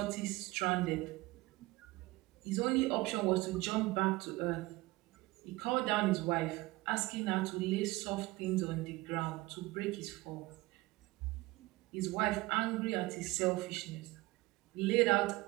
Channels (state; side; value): quieter; left; 20.8 dB